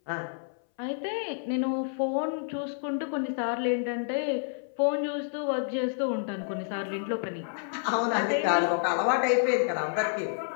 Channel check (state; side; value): silent; right; 59 dB below the other